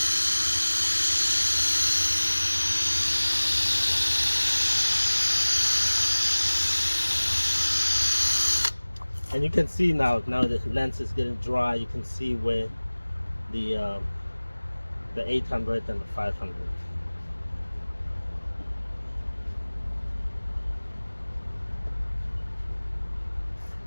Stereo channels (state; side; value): inverted; both; correlation -1.00